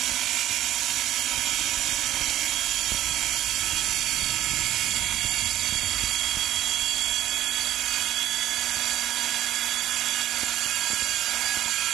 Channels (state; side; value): quieter; left; 12.9 dB